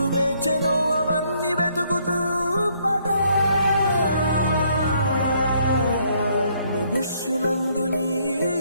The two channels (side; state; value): both; inverted; correlation -0.68